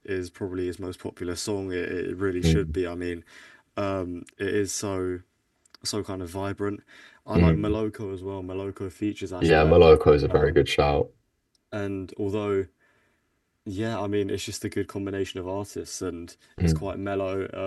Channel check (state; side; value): identical; both; correlation 1.00